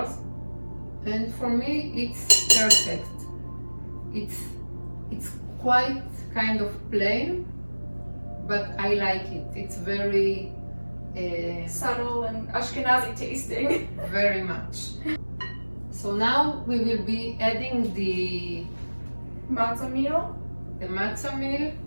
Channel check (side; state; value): both; inverted; correlation -1.00